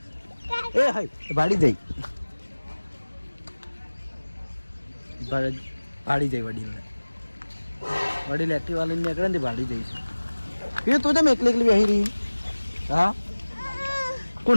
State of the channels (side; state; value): both; inverted; correlation -1.00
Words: એ હાય ભાડી જઈ વડીલ એક્ટિવા લઈને નીકળે ને ભાડી જઈશ. એ તું તમે એકલી બેસી રહી? હા